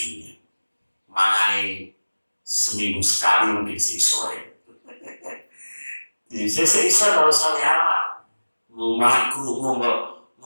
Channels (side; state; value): both; inverted; correlation -1.00